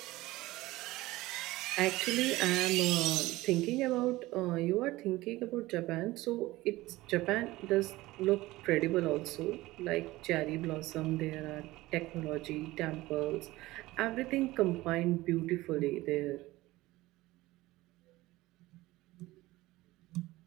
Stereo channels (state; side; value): quieter; left; 18.6 dB